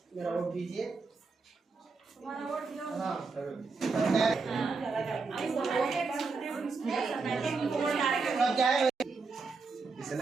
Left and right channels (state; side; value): quieter; left; 4.4 dB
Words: मेरा वोट दीजिए। हाँ क्या है इस